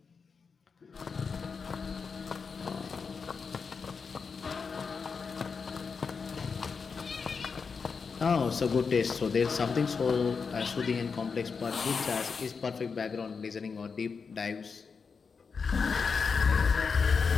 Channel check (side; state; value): right; quieter; 5.4 dB